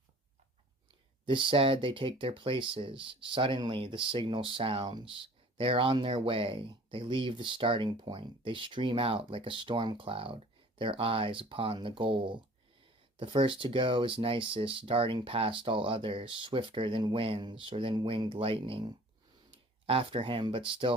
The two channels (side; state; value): both; normal; correlation 0.49